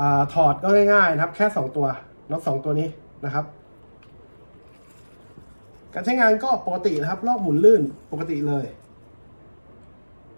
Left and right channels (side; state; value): both; inverted; correlation -1.00